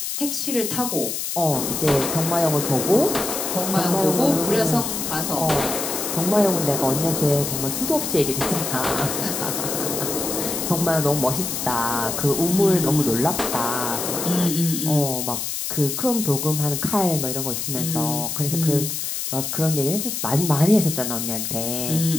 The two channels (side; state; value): left; noise; hiss, 3 dB below the sound